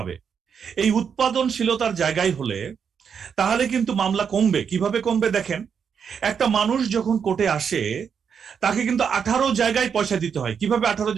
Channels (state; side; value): quieter; left; 7.0 dB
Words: এই উৎপাদনশীলতার জায়গায় হলে তাহলে কিন্তু মামলা কমবে। কিভাবে কমবে দেখেন, একটা মানুষ যখন কোর্টে আসে তাকে কিন্তু 18 জায়গায় পয়সা দিতে হয়। কিভাবে 18